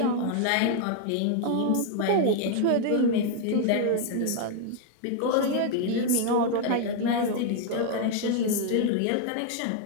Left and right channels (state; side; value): different; both; correlation 0.00